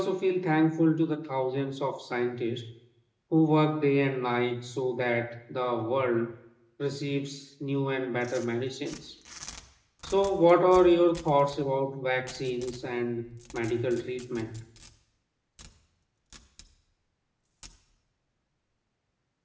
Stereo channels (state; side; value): identical; both; correlation 1.00